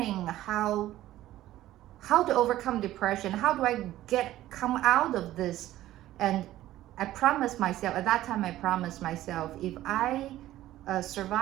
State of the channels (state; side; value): quieter; left; 14.5 dB